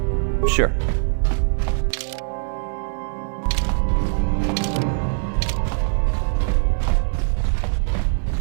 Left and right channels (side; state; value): left; silent; digital silence